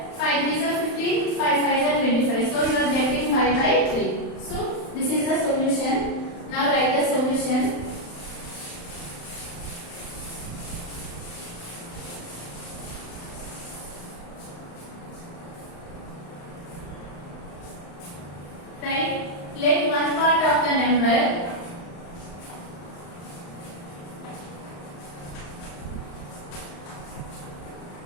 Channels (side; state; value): right; late; 35 ms